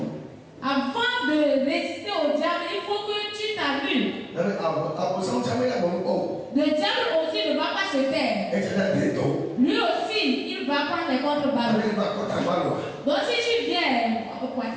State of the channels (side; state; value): both; identical; correlation 1.00